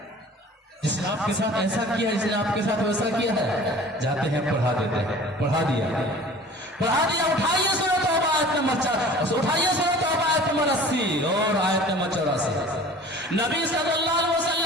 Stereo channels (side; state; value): both; normal; correlation 0.45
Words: جس نے آپ کے ساتھ ایسا کیا, جس نے آپ کے ساتھ ویسا کیا ہے. جاتے ہیں, پڑھا دیتے ہیں. پڑھا دیا. اٹھائیے سورۃ توبہ آیت نمبر 4, اٹھائیے سورۃ توبہ آیت نمبر 80 اور آیت نمبر 84. نبی صلی اللہ علیہ